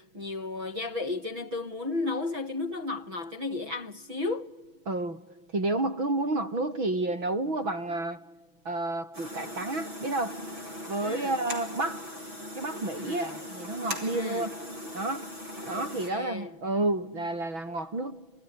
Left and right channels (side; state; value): left; late; 6.1 ms